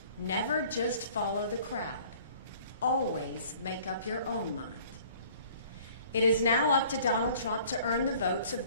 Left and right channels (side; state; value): both; inverted; correlation -0.53